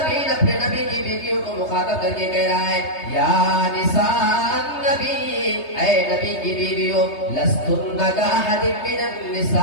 اپنے نبی کی بیویوں کو مخاطب کر کے کہہ رہا ہے یا نساء النبی، اے نبی کی بیویوں، لستن کاحد من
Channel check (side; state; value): right; late; 3.2 ms